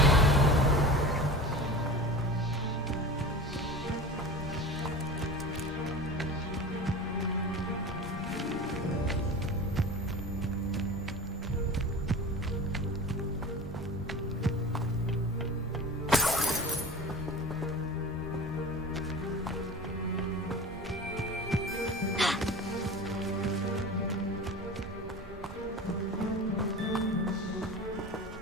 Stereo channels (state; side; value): normal; both; correlation 0.34